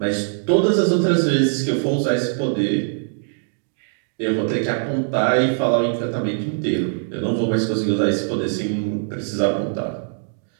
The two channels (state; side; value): silent; left; digital silence